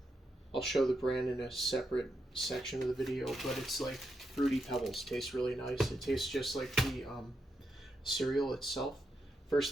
I'll show the brand in a separate section of the video, but it's like Fruity Pebbles. Tastes really nice. It tastes just like the cereal itself. First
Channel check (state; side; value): normal; both; correlation 0.84